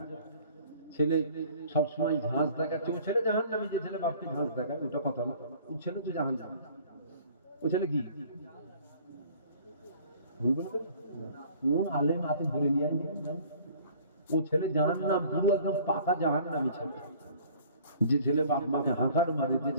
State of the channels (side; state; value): both; inverted; correlation -0.51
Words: ছেলে সবসময় ঝাঁস দেখাচ্ছে। ও ছেলে জাহান্নামী, যে ছেলে বাপকে ঝাঁস দেখায় ওটা কথা না। ও ছেলে তো জাহান্নামী। ও ছেলে কি কোন আলেম হাতে ধরে নিয়ে আয়? ও ছেলে জাহান্নাম, পুরো একদম পাকা জাহান্নামী ছেলে। যে ছেলে বাপ মাকে হাঁকার মারে, যে